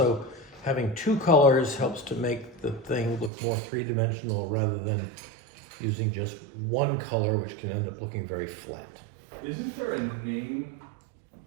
having two colors helps to make the thing look more three-dimensional rather than using just one color, which can end up looking very flat. Isn't there a name?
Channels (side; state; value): left; drops out; at 3.3 s